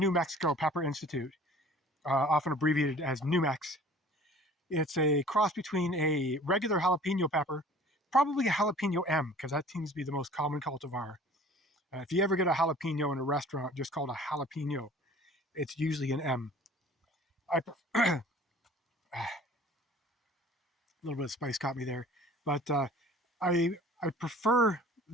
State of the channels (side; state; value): both; normal; correlation 0.48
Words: Mexico Pepper Institute, often abbreviated as Numex. It's a cross between a regular jalapeno pepper, probably a jalapeno M, because that seems to be the most common cultivar. If you ever get a jalapeno in a restaurant just called a jalapeno, it's usually an M. A little bit of spice caught me there, but I prefer